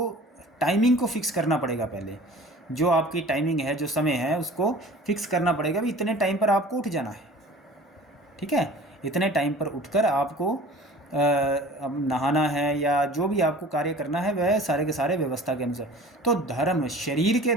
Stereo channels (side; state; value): both; normal; correlation 0.44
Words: टाइमिंग को फिक्स करना पड़ेगा। पहले जो आपकी टाइमिंग है, जो समय है, उसको फिक्स करना पड़ेगा भी इतने टाइम पर आपको उठ जाना है, ठीक है। इतने टाइम पर उठकर आपको अब नहाना है या जो भी आपको कार्य करना है वह सारे के सारे व्यवस्था के अनुसार। तो धर्म, शरीर के